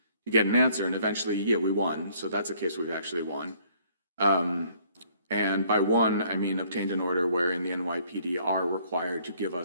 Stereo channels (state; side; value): inverted; both; correlation -0.61